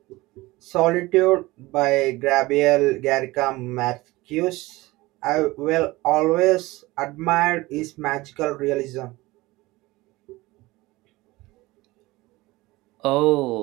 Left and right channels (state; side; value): quieter; left; 20.3 dB